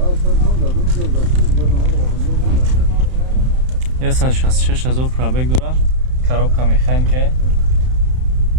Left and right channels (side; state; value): left; late; 31 ms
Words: Я 166,000 пробег дора. Коробка механика.